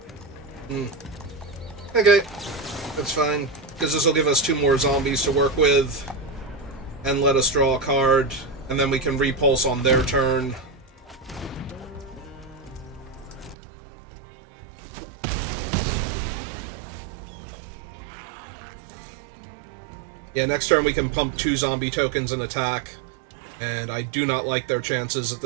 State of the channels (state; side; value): drops out; left; at 13.6 s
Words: Okay, that's fine, because this will give us 2 more zombies to work with, and let us draw a card, and then we can repulse on their turn. Yeah, next turn we can pump 2 zombie tokens and attack. And I do not like their chances at